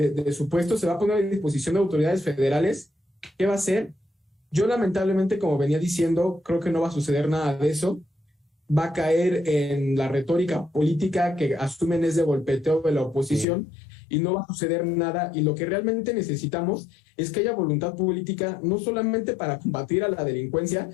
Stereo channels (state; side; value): drops out; right; at 13.5 s